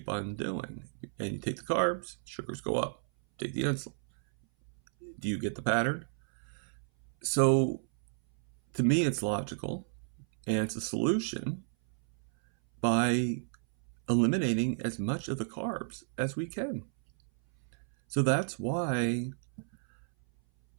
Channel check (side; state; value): left; silent; 56 dB below the other